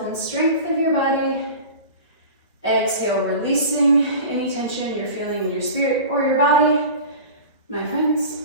and strength of your body. Exhale, releasing any tension you're feeling in your spirit or your body. My friends,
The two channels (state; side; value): inverted; both; correlation -0.36